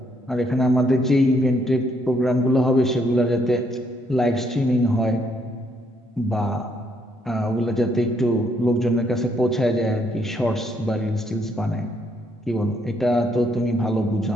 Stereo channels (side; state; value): both; normal; correlation 0.72